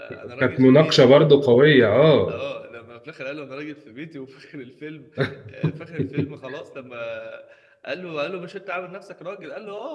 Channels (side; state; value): both; identical; correlation 1.00